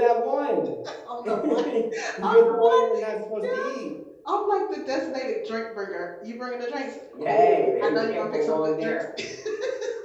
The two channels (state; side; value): identical; both; correlation 1.00